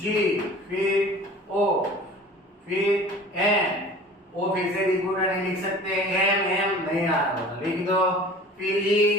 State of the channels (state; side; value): normal; both; correlation 0.43